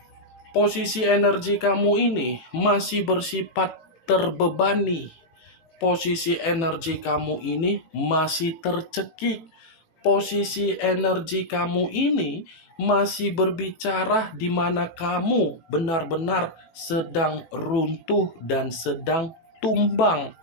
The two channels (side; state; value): right; late; 18 ms